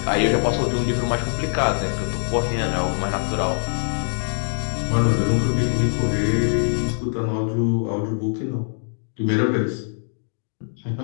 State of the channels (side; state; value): right; silent; digital silence